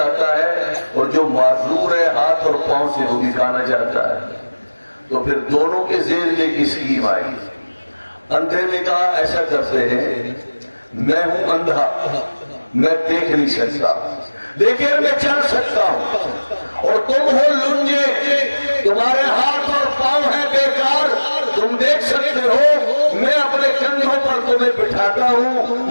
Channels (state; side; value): inverted; both; correlation -1.00